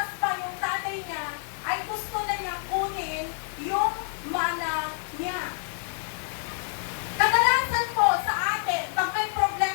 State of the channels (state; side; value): silent; right; 60 dB below the other